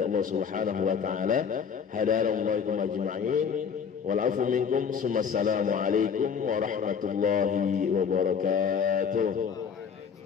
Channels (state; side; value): quieter; right; 6.9 dB